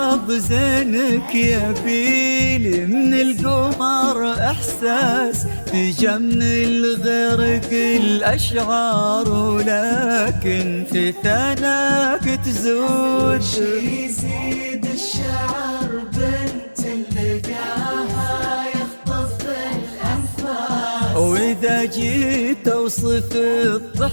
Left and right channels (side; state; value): both; inverted; correlation -1.00